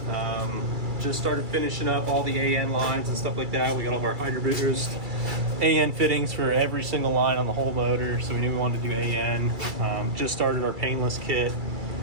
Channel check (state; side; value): late; left; 2.3 ms